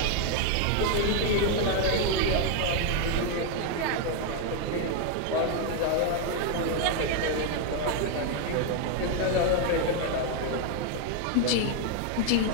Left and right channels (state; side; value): different; both; correlation 0.01